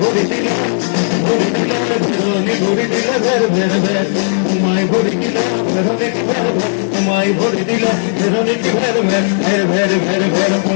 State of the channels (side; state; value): right; silent; digital silence